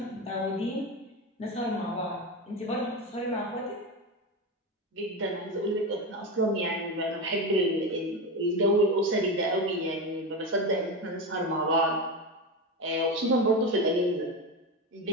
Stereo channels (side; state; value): both; normal; correlation 0.19